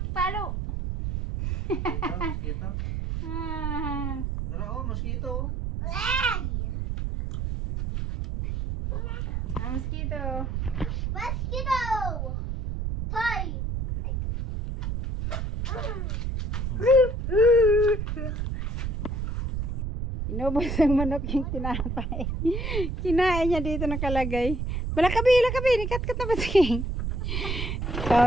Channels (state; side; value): noise; right; rumble, 2 dB below the sound